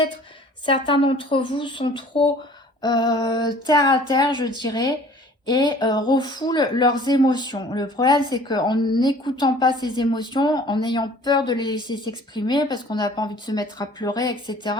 certains d'entre vous sont trop terre à terre, je dirais, et refoulent leurs émotions. Le problème, c'est qu'en n'écoutant pas ces émotions, en ayant peur de les laisser s'exprimer, parce qu'on n'a pas envie de se mettre à pleurer, etc.,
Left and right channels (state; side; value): normal; both; correlation 0.50